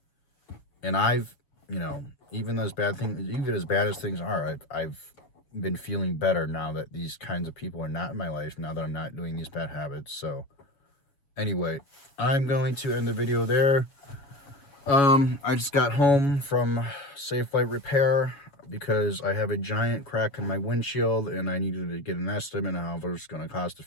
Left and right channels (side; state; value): right; late; 7.1 ms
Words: And you know, even as bad as things are, I've been feeling better now that these kinds of people are not in my life, now that I'm not doing these bad habits. So anyway, I'm going to end the video there. I just got home from Safe Light Repair because I have a giant crack in my windshield and I needed to get an estimate on how much it's going to cost to